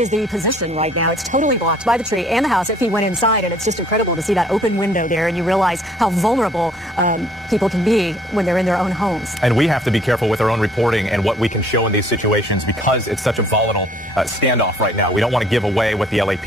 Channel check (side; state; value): both; normal; correlation 0.59